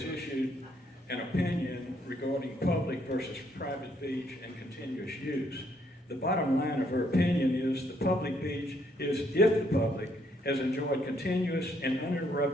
issued an opinion regarding public versus private beach and continuous use. The bottom line of her opinion is the public beach is if the public has enjoyed continuous and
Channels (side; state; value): both; normal; correlation 0.70